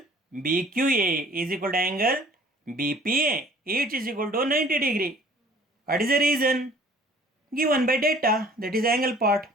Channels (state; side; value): normal; both; correlation 0.52